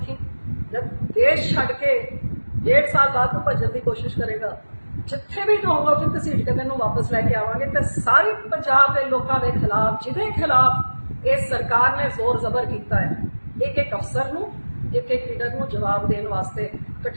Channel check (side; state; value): both; inverted; correlation -1.00